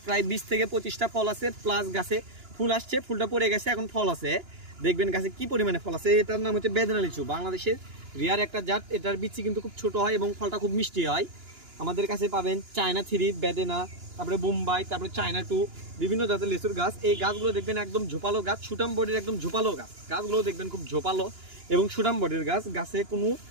প্রায় 20 থেকে 25টা ফল আছে, প্লাস গাছে ফুল আসছে, ফুলটা পড়ে গেছে, এখন ফল আছে। দেখবেন গাছে কি পরিমাণে ফল আছে। এটার নাম হচ্ছে বেদেনা লিচু। বাংলাদেশের রিয়ার একটা জাত। এটার বিচি কিন্তু খুব ছোট হয় এবং ফলটা খুব মিষ্টি হয়। আমাদের কাছে পাবেন চায়না 3, বেদেনা, তারপরে বোম্বাই, তারপরে চায়না 2, বিভিন্ন জাতের লিচুর গাছ। এই গাছগুলো দেখবেন একদম ঝোপালো গাছ, সুটাম বডির একদম ঝোপালো গাছ। গাছগুলো দেখবেন খুব ঝোপালো এবং সুটাম বডির গাছ। গাছে কোনো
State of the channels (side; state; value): left; late; 2.9 ms